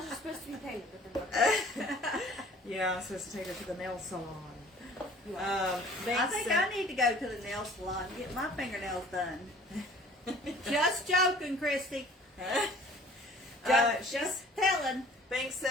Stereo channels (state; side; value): normal; both; correlation 0.51